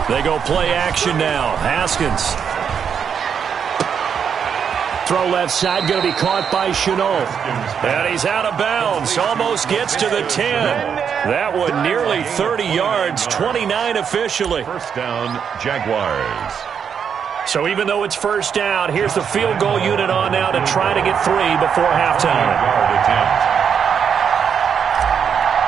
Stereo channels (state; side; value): quieter; left; 7.3 dB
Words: They go play action now. Haskins. Throw left side, going to be caught by Shenault. And he's out of bounds. Almost gets to the 10. That one nearly 30 yards, 29 officially. First down, Jaguars. So even though it's first down, here's the field goal unit on now to try to get 3 before halftime. Yard attempt.